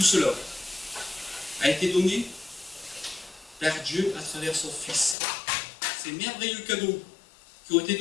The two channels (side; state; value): right; drops out; at 5.2 s